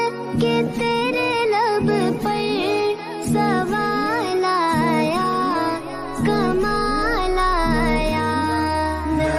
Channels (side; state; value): both; identical; correlation 1.00